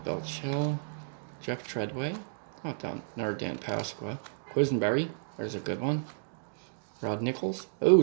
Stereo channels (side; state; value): left; silent; digital silence